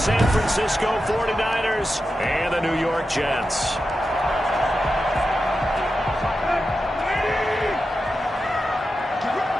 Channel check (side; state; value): both; normal; correlation 0.90